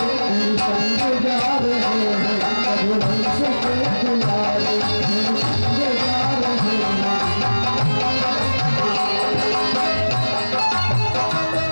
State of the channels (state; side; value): inverted; both; correlation -1.00